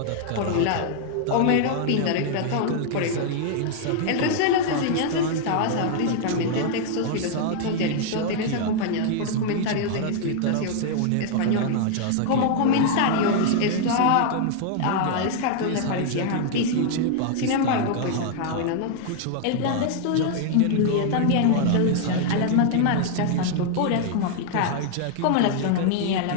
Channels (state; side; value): different; both; correlation 0.00